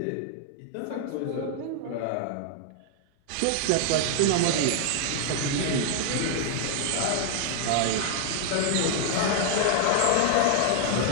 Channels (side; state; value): both; different; correlation 0.00